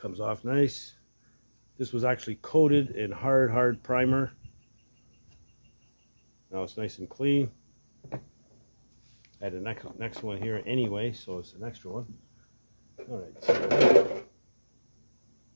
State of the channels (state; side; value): inverted; both; correlation -1.00